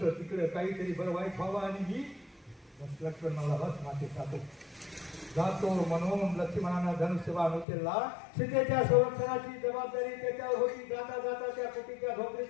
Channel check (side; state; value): right; drops out; at 7.7 s